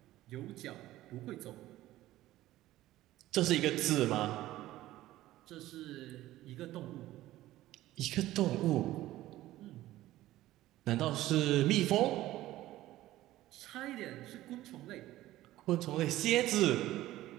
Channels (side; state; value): left; quieter; 15.5 dB